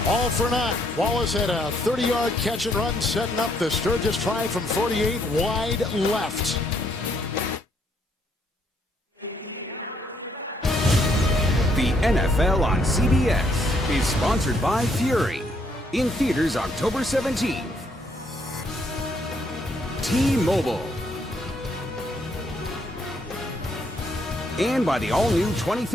all for naught. Wallace had a 30-yard catch and run, setting up the Sturgis try from 48 wide left. The NFL on CBS is sponsored by Fury. In theaters October 17th. T-Mobile. And by the all-new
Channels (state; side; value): normal; both; correlation 0.71